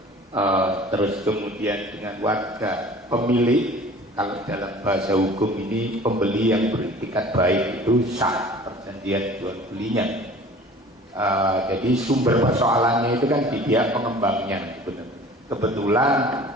terus kemudian dengan warga pemilik, kalau dalam bahasa hukum ini pembeli yang beretikat baik itu sah perjanjian jual belinya. Jadi sumber persoalannya itu kan di pihak pengembangnya. Kebetulan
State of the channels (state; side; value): normal; both; correlation 0.46